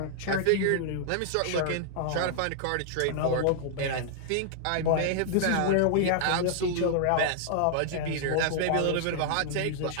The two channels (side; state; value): both; different; correlation -0.01